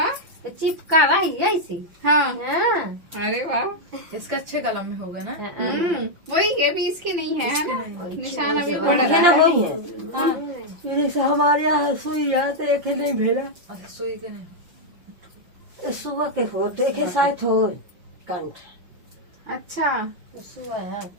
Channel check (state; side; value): late; left; 5.8 ms